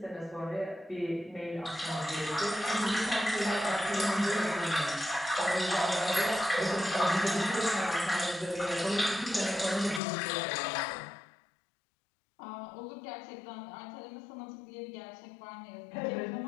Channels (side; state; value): right; drops out; at 10.0 s